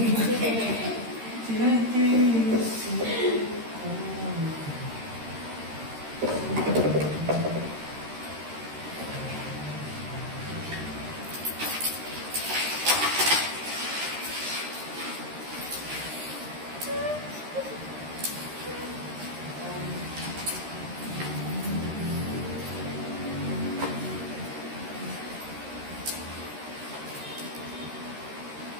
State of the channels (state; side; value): late; left; 13 ms